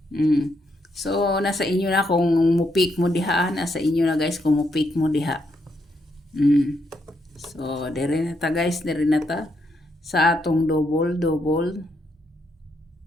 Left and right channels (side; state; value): both; normal; correlation 0.78